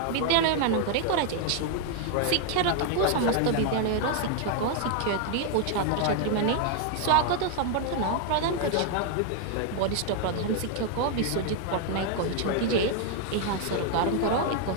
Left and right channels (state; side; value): different; both; correlation 0.00